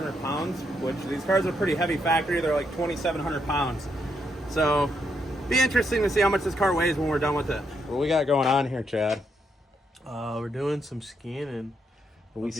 pounds, which these cars are pretty heavy factory. They're like 2,700 pounds. So be interesting to see how much this car weighs when we're done with it. What we got going on here, Chad? We're doing some scanning. What are we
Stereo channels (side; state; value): both; normal; correlation 0.78